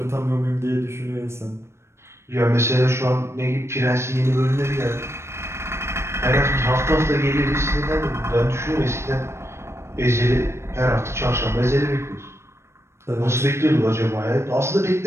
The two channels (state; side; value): late; left; 0.13 ms